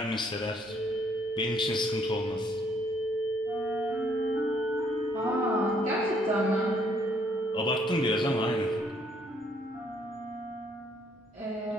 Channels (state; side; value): normal; both; correlation 0.67